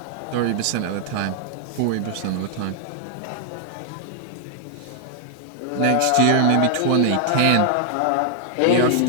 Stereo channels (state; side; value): different; both; correlation 0.00